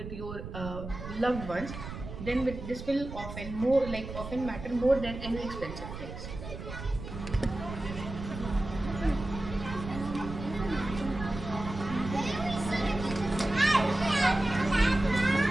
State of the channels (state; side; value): noise; right; rumble, 9 dB below the sound